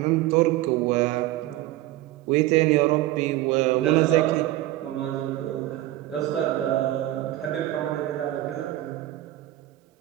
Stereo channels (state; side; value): quieter; left; 15.7 dB